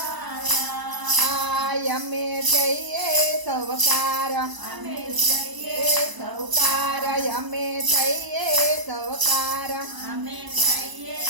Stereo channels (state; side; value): late; left; 1.0 ms